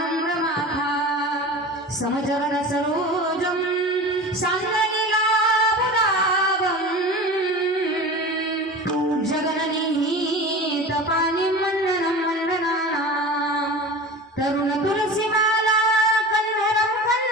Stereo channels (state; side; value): normal; both; correlation 0.34